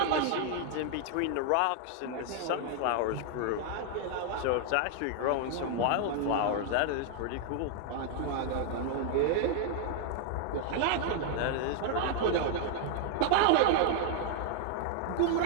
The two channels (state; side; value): different; both; correlation 0.00